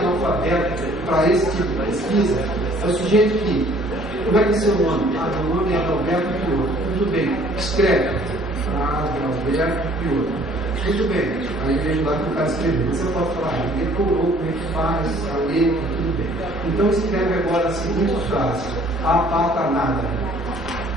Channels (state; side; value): normal; both; correlation 0.56